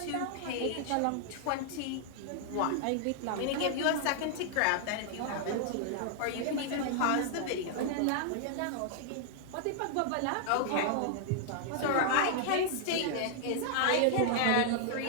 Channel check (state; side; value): different; both; correlation -0.01